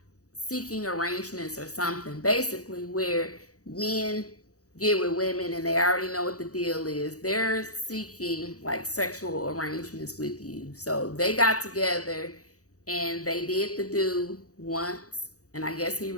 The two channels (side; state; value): right; late; 0.66 ms